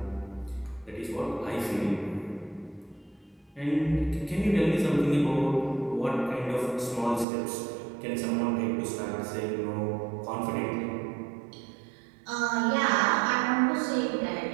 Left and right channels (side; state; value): left; drops out; at 7.2 s